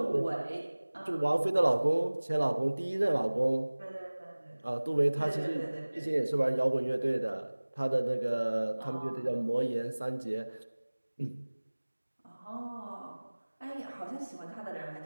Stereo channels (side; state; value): both; inverted; correlation -1.00